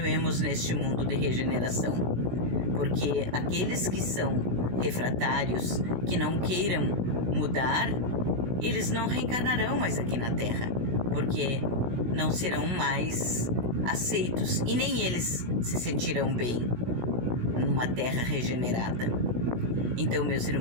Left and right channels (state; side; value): late; left; 16 ms